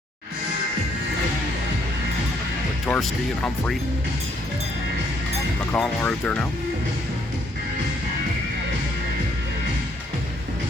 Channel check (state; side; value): normal; both; correlation 0.69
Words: Torsky and Humphrey. McConnell are out there now.